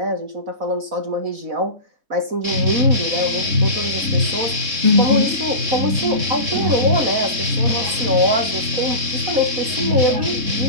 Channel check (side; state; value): left; late; 3.7 ms